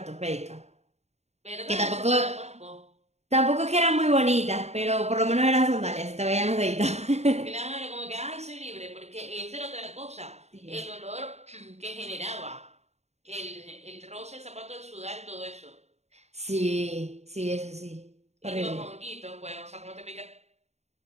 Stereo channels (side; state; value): left; late; 0.32 ms